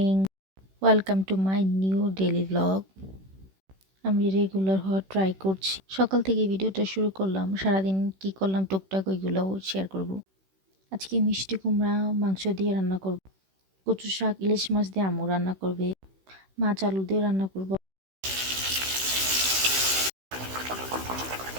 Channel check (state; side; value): late; left; 16 ms